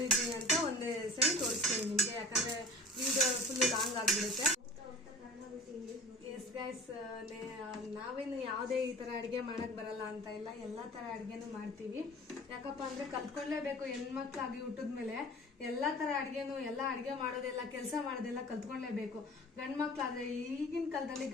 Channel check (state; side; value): normal; both; correlation 0.41